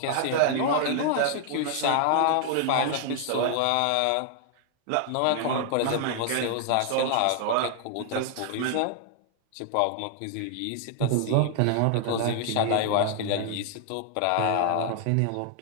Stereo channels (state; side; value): different; both; correlation 0.00